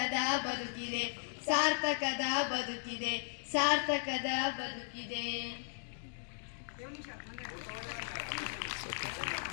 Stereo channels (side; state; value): right; silent; digital silence